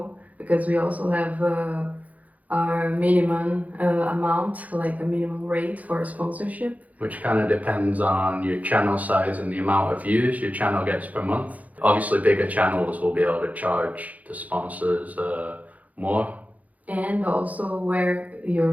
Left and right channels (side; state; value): left; late; 0.074 ms